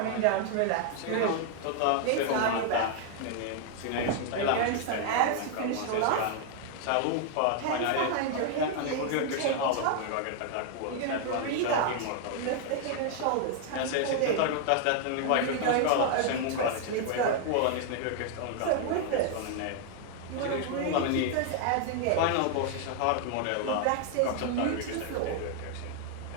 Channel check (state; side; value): different; both; correlation 0.00